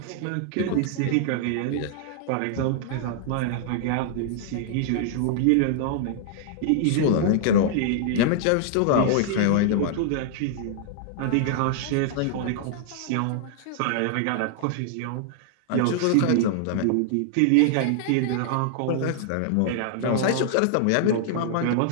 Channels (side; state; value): both; different; correlation -0.01